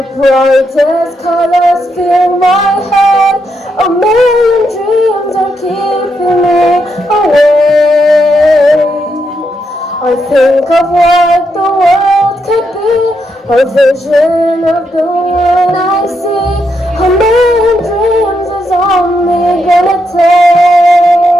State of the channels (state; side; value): normal; both; correlation 0.81